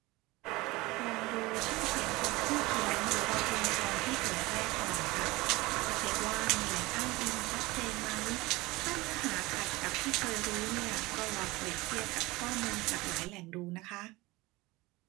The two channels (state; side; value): quieter; left; 21.3 dB